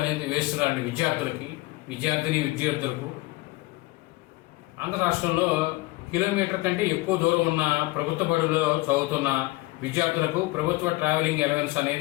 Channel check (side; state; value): right; quieter; 21.1 dB